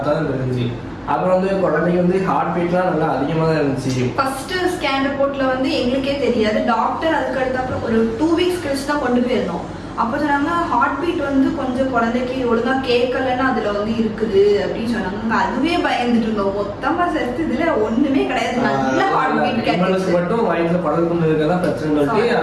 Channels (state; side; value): identical; both; correlation 1.00